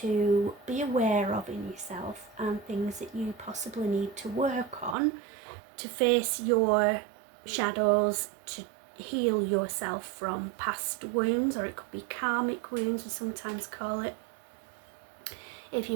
be aware of in yourself and things that you possibly need to work on to face your shadows, to heal yourself from past wounds, or it could be karmic wounds, we sometimes call it. If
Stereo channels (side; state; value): left; drops out; at 5.0 s